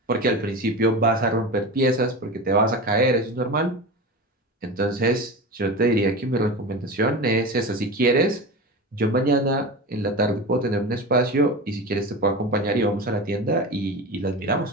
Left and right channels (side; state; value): both; normal; correlation 0.27